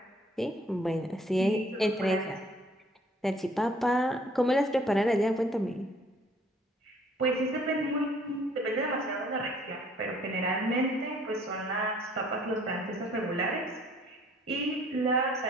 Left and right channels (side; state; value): both; normal; correlation 0.59